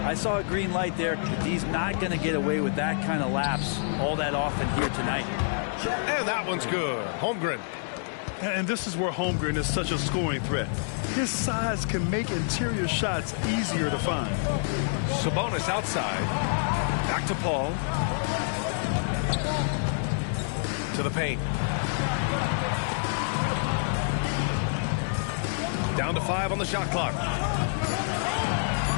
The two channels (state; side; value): silent; right; digital silence